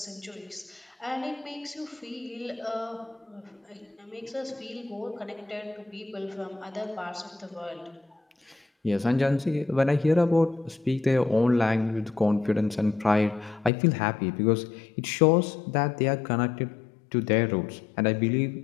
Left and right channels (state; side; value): drops out; right; at 13.7 s